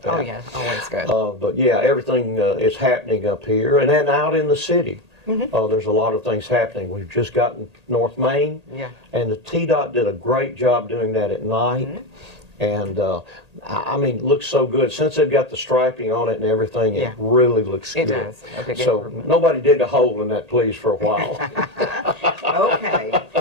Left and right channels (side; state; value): left; late; 1.8 ms